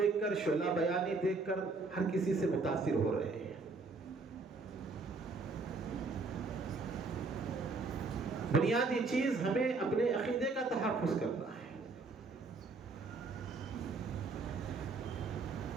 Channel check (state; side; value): quieter; left; 3.9 dB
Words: کر، شعلہ بیانی دیکھ کر ہر کسی سے متاثر ہو رہے ہیں۔ بنیادی چیز ہمیں اپنے عقیدے کا تحفظ کرنا ہے۔